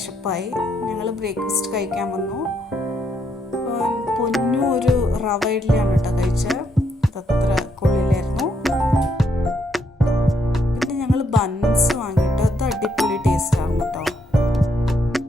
ഞങ്ങൾ ബ്രേക്ക്ഫാസ്റ്റ് കഴിക്കാൻ വന്നു. പൊന്നു ഒരു റവ ഇഡ്ഡലിയാണ് കേട്ടോ കഴിച്ചത്. അതത്ര കൊള്ളിലായിരുന്നു. പിന്നെ ഞങ്ങൾ ബൺസ് വാങ്ങിയിട്ട് അത് അടിപൊളി ടേസ്റ്റായിരുന്നു കേട്ടോ.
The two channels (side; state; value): both; normal; correlation 0.75